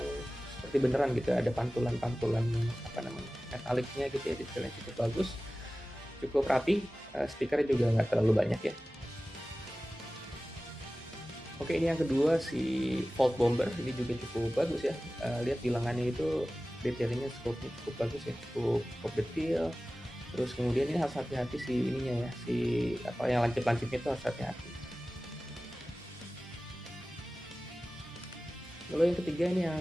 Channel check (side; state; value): both; normal; correlation 0.96